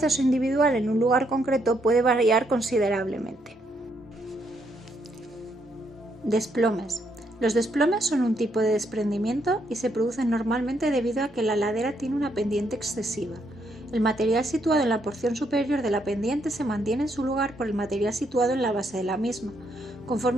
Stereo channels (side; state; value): both; normal; correlation 0.75